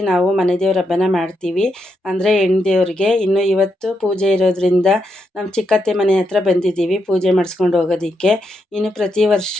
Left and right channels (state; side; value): normal; both; correlation 0.82